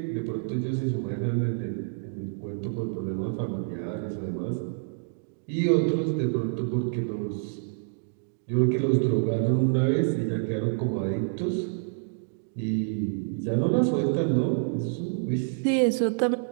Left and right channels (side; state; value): left; silent; digital silence